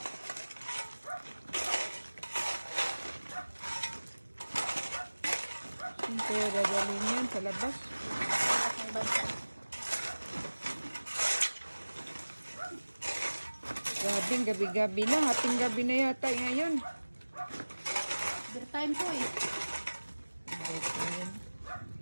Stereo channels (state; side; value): inverted; both; correlation -1.00